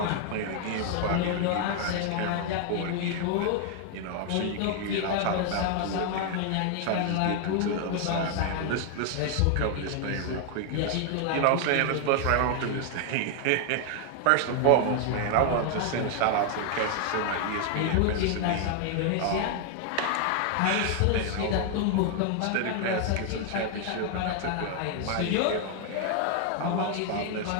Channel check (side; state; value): both; different; correlation 0.00